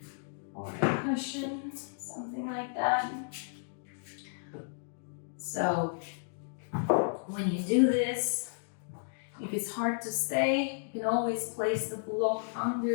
or a cushion, something like that. So when you do this, if it's hard to stay, you can always place the block under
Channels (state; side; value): silent; right; digital silence